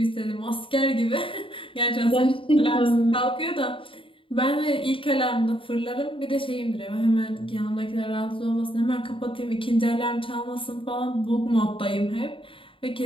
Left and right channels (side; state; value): right; late; 0.25 ms